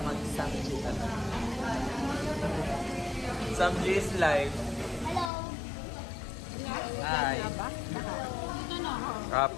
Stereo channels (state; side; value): drops out; right; at 5.3 s